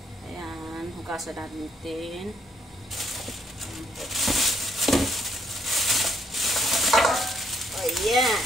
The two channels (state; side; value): normal; both; correlation 0.71